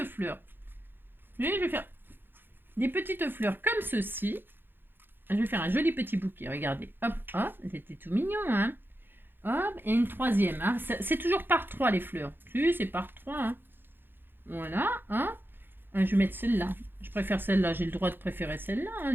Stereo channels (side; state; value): left; late; 0.099 ms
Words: fleurs. Je vais faire des petites fleurs comme ceci. je vais faire un joli petit bouquet. Regardez, hop, hop, c'était tout mignon, hein. Hop, et une troisième. Hein. C'est toujours par trois les fleurs. Si, c'est par trois. Hein. Voilà, hein. Je vais mettre celle-là. Je préfère celle-là. J'ai le droit de préférer celle-là, hein,